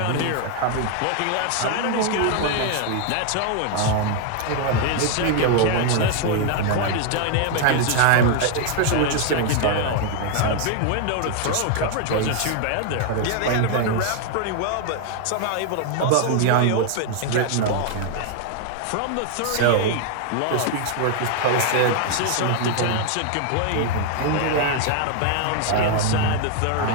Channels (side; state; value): both; different; correlation 0.00